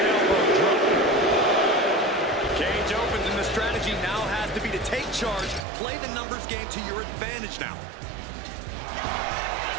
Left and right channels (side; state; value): left; drops out; at 5.7 s